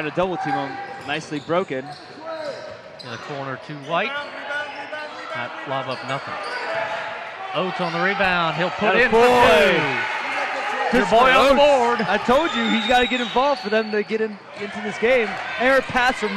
to double team him. Nicely broken. In the corner to White. Not lob up nothing. Oates on the rebound. He'll put in for two. Your boy on the board. I told you he's got to get involved for them to get into this game. Error pass from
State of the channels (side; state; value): both; identical; correlation 1.00